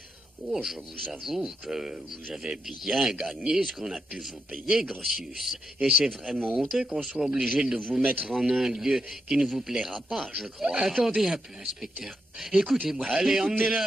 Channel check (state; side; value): normal; both; correlation 0.83